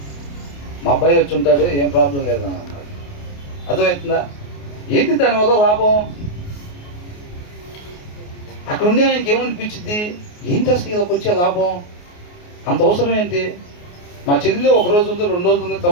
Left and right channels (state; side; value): late; right; 28 ms